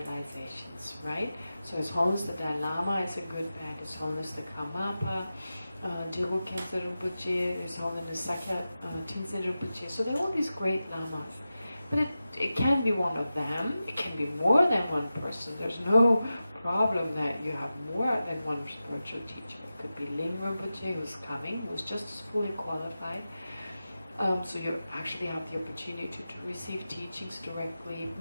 right? So His Holiness the Dalai Lama is a good bet, His Holiness the Karmapa, Geshe Kelsang Wangmo Refuge, His Holiness Sakya Tenzin Rinpoche. So there are all these great lamas. But it can be one of them, it can be more than one person. There's no problem that you have more than one spiritual teacher. It could be Ling Rinpoche, who's coming, who's just as fully qualified. So you actually have the opportunity to receive teachings directly,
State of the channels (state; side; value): inverted; both; correlation -0.93